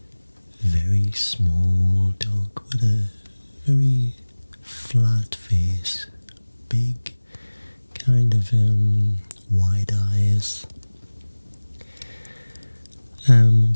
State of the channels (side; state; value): both; inverted; correlation -1.00